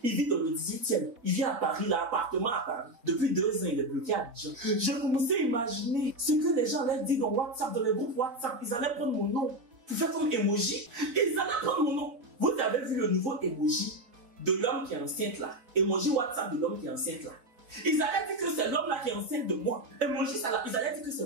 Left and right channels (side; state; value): left; late; 4.1 ms